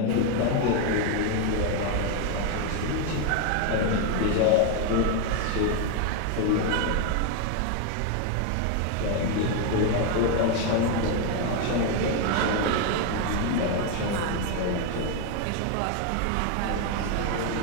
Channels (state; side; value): different; both; correlation 0.01